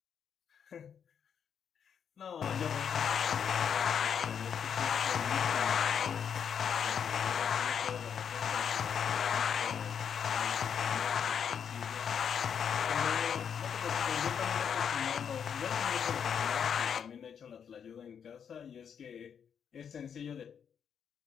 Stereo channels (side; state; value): right; quieter; 7.6 dB